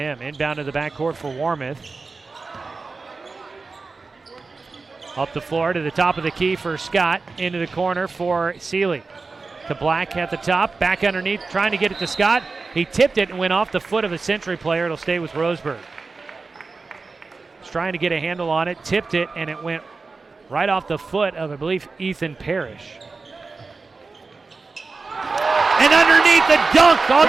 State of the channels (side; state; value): left; quieter; 4.1 dB